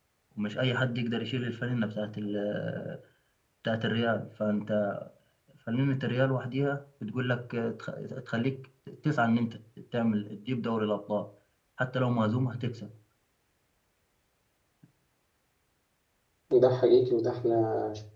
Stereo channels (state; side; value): identical; both; correlation 1.00